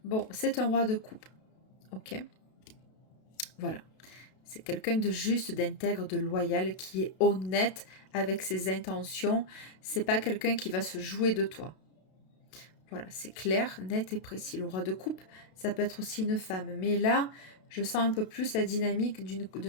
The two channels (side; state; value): right; late; 32 ms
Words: Bon, c'est un roi de coupe. Ok. Voilà. C'est quelqu'un de juste, d'intègre, de loyal, qui est honnête avec ses intentions. C'est pas quelqu'un qui va se jouer de toi. Voilà, c'est clair, net et précis. Le roi de coupe, ça peut être aussi une femme. Mais là, je sens un peu plus la dynamique